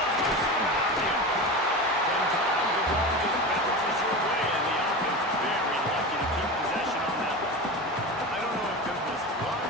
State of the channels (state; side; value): normal; both; correlation 0.26